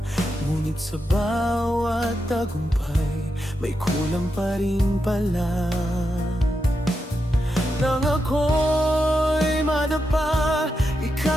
Ngunit sa bawat tagumpay, may kulang pa rin pala. Nang ako'y madapa,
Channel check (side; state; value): both; normal; correlation 0.86